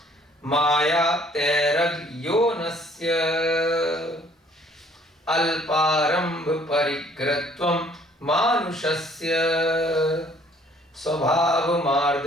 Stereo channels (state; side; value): normal; both; correlation 0.59